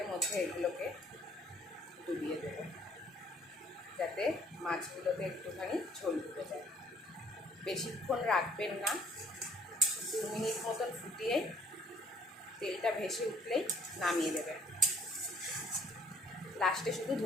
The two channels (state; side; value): normal; both; correlation 0.59